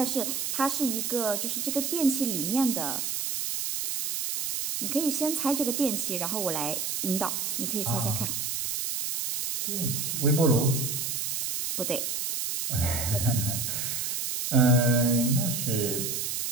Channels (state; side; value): noise; right; hiss, 2 dB below the sound